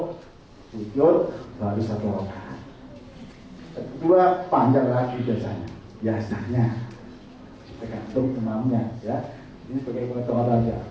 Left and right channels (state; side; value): identical; both; correlation 1.00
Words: sujud, baru satu rakaat. Kedua panjang lagi biasanya. Tergantung imamnya ya. Ini sebagai pengetahuan aja.